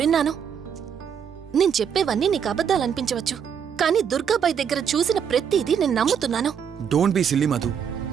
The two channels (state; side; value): quieter; left; 7.7 dB